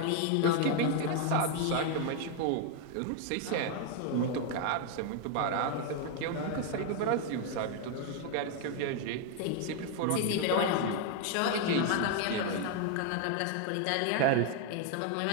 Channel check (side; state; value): both; different; correlation 0.01